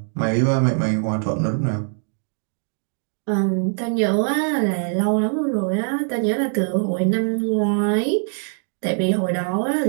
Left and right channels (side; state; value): left; silent; 57 dB below the other